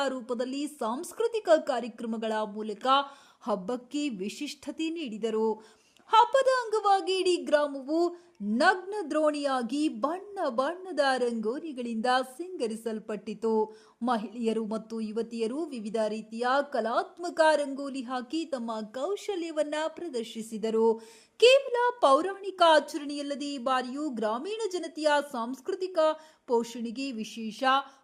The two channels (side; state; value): both; identical; correlation 1.00